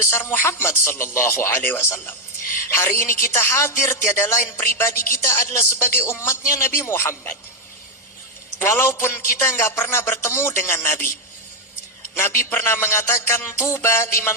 Muhammad sallallahu alaihi wasallam. Hari ini kita hadir, tiada lain pribadi kita adalah sebagai umatnya Nabi Muhammad. Walaupun kita nggak pernah bertemu dengan Nabi. Nabi pernah mengatakan, tuba liman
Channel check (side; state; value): both; normal; correlation 0.03